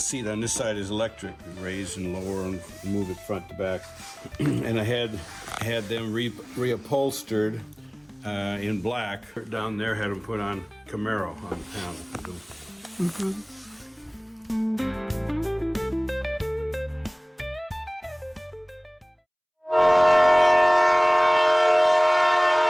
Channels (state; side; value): identical; both; correlation 1.00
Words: on this side is electric. You raise and lower and move it front to back. And I had them reupholstered in black. Down there, had them put on Camaro on the panel.